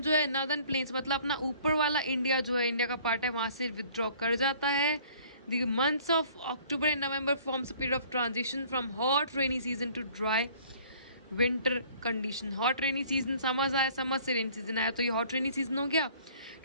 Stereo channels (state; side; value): inverted; both; correlation -0.54